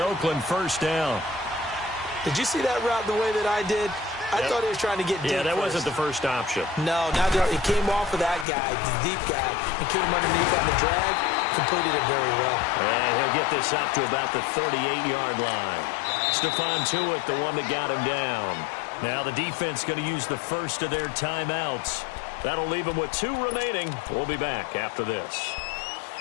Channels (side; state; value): right; drops out; at 8.5 s